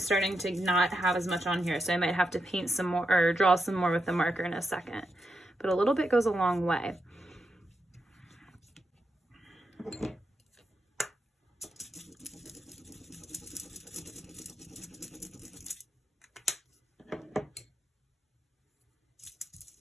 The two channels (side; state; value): both; normal; correlation 0.85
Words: to not have as much on here, so I might have to paint some more or draw some more with the marker in a second, but a little bit goes a long way.